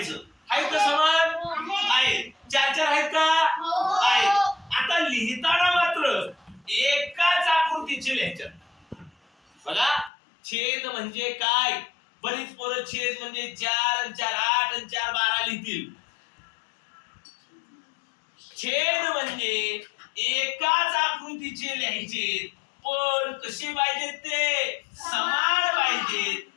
आहेत का समान? आहेत. 4 आहेत का? आहेत. आता लिहिताना मात्र एकाच आकृतीचे लिहायचे. बघा, छेद म्हणजे काय? बरीच पोरं छेद म्हणजे 4 आणि 4 8 आणि 4 12 लिहितील. छेद म्हणजे एकाच आकृतीचे लिहायचे, पण कसे पाहिजेत ते? समान पाहिजेत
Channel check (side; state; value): right; drops out; at 10.1 s